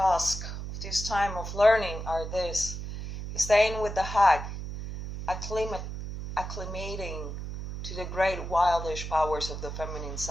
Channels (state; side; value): noise; right; hum, 7 dB below the sound